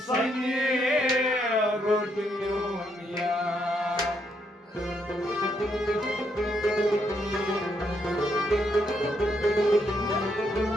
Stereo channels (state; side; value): normal; both; correlation 0.76